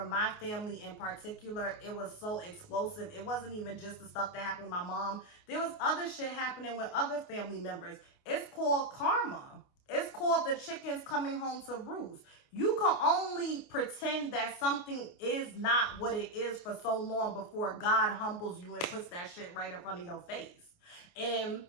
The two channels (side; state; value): right; late; 28 ms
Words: my family in particular, it was so explosive. It wasn't even just the stuff that happened with my mom. There was other shit happening with other family members. It's called karma. It's called the chickens coming home to roost. You can only pretend that something is not what it is for so long before God humbles you and puts that shit right in front of your face. And